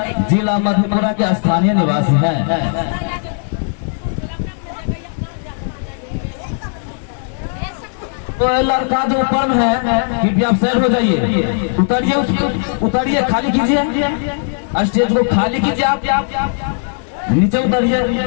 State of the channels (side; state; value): right; silent; 68 dB below the other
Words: जिला मधेपुरा के स्थानीय निवासी हैं। तो लड़का जो ऊपर है कि आप साइड हो जाइए, उतरिए, उसके उतरिए, खाली कीजिए, स्टेज को खाली कीजिए, आप नीचे उतरिए।